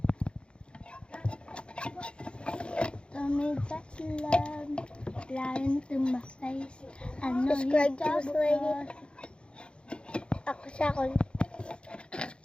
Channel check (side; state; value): right; late; 0.055 ms